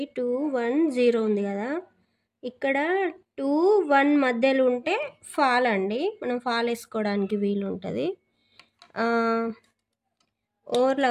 2 1 0 ఉంది కదా. ఇక్కడ 2 1 మధ్యలో ఉంటే ఫాల్ అండి, మనం ఫాల్ వేసుకోవడానికి వీలు ఉంటుంది.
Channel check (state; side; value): identical; both; correlation 1.00